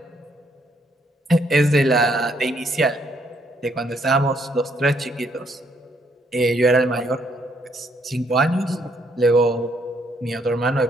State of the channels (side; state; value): both; normal; correlation 0.71